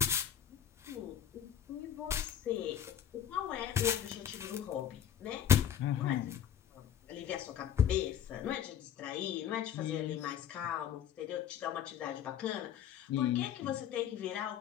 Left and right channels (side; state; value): right; quieter; 9.7 dB